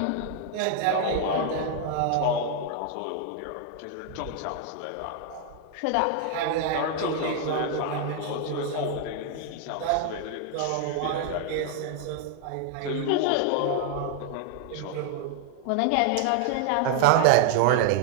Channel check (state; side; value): different; both; correlation 0.00